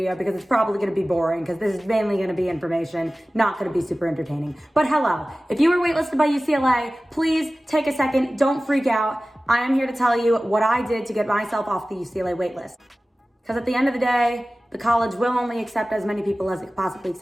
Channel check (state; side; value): normal; both; correlation 0.97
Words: because it's probably gonna be boring because this is mainly gonna be information, not gonna be super entertaining. But hello, if you were waitlisted by UCLA, please take a second, don't freak out. I am here to tell you what I did to get myself off the UCLA waitlist. Because at the end of the day, the college will only accept as many people as it can possibly